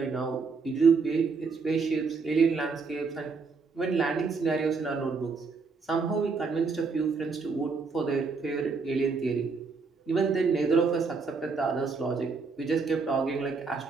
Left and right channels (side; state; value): left; quieter; 4.7 dB